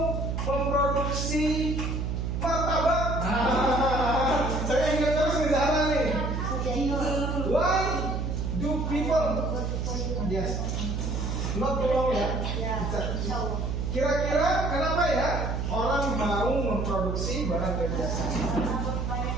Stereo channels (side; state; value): right; noise; hum, 1 dB below the sound